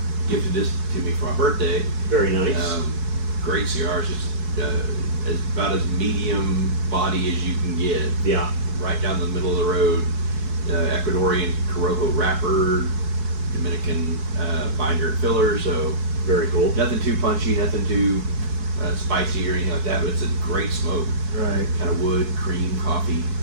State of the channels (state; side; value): late; left; 4.7 ms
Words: gifted this to me for my birthday. Very nice. Great cigars, just about as medium body as you can get. Yeah. Right down the middle of the road. Ecuadorian Corojo wrapper, Dominican binder and filler. So very cool. Nothing too punchy, nothing too spicy or anything like that. But it's a great smoke. Right. Kind of wood, cream, coffee.